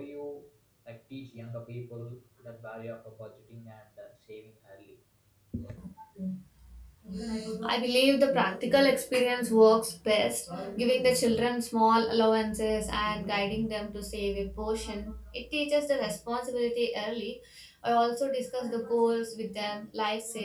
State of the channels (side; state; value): both; identical; correlation 1.00